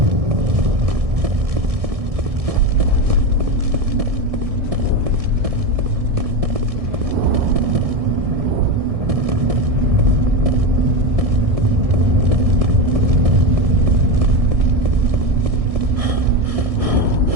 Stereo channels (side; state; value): left; late; 1.6 ms